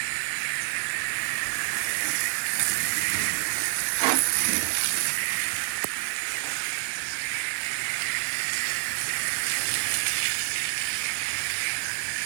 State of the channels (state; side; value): silent; left; 60 dB below the other